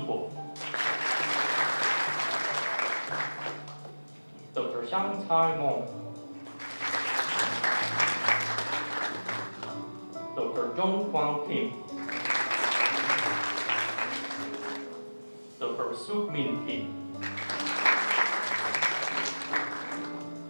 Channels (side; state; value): both; inverted; correlation -1.00